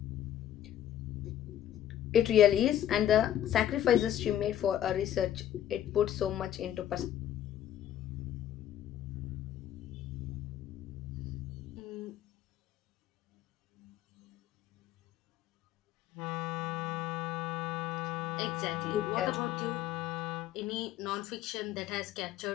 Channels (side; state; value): right; quieter; 11.4 dB